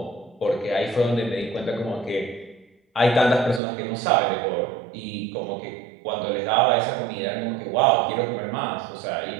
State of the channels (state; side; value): drops out; left; at 3.6 s